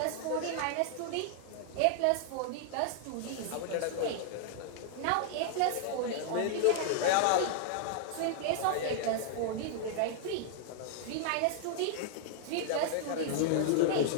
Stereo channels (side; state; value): both; different; correlation -0.01